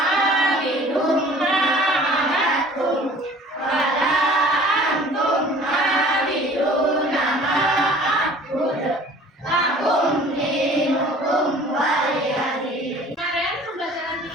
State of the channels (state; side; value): normal; both; correlation 0.49